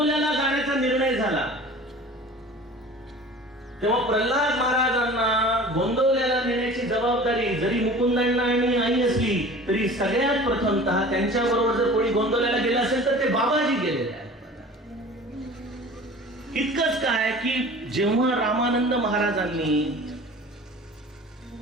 जाण्याचा निर्णय झाला तेव्हा प्रल्हाद महाराजांना गोंदवल्याला नेण्याची जबाबदारी जरी मुकुंदांना आणि आई असली तरी सगळ्यात प्रथमतः त्यांच्या बरोबर जर कोणी गोंदवल्याला गेलं असेल तर ते बाबाजी गेलेले आहेत. इतकंच काय की जेव्हा रामानंद महाराजांनी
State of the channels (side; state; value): both; normal; correlation 0.42